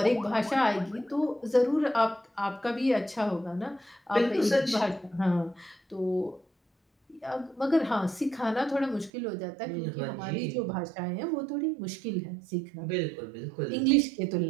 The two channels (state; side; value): drops out; left; at 9.1 s